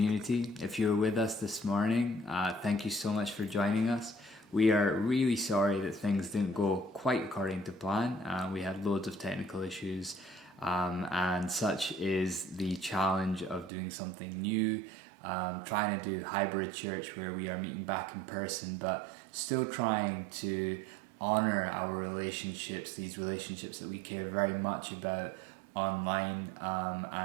If you were with us this morning, thank you so much for joining us. We are really sorry that things didn't go quite according to plan. We had loads of technical issues, and such is the challenge of doing something new, trying to do hybrid church where we are meeting back in person, but still trying to honor our relationships, these relationships that we care very much about online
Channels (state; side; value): drops out; left; at 13.7 s